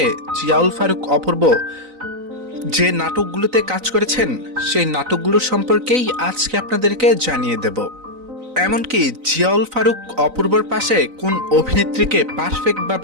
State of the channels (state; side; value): late; left; 3.9 ms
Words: জিয়াউল ফারুক অপূর্ব যে নাটকগুলোতে কাজ করেছেন সেই নাটকগুলোর সম্পর্কেই আজকে আপনাদেরকে জানিয়ে দেব। এমনকি জিয়াউল ফারুক অপূর্বর পাশে কোন অভিনেত্রীকে